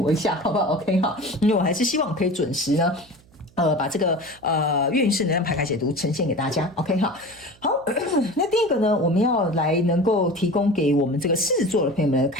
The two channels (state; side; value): noise; right; hum, 29 dB below the sound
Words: 一下，好不好 ？OK 哈，因为我还是希望可以准时呢。把这个月运势能量牌卡解读呈现给大家 ，OK 哈。好，那第一个呢，我们要来能够提供给我们这个狮子座的朋友们的